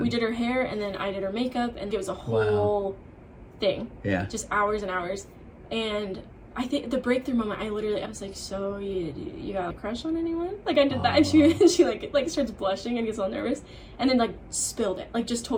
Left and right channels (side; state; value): both; identical; correlation 1.00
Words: We did her hair and then I did her makeup and it was a whole thing. Yeah. Just hours and hours. And I think the breakthrough moment, I was like, so you got a crush on anyone? Like I did that, and she like starts blushing and gets all nervous, and then like spilled it, like just